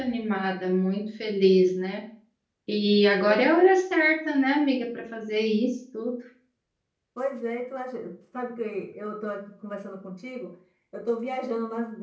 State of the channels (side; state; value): both; identical; correlation 1.00